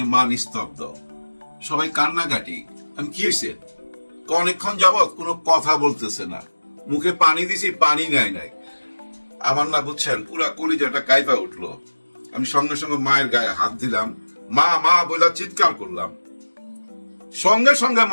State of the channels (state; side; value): inverted; both; correlation -1.00